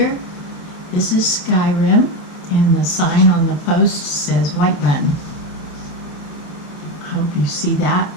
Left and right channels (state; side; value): late; right; 28 ms